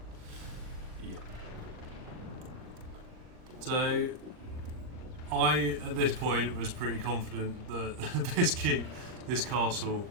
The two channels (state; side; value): late; left; 39 ms